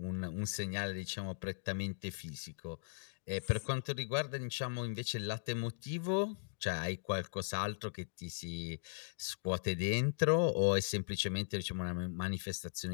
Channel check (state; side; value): silent; right; digital silence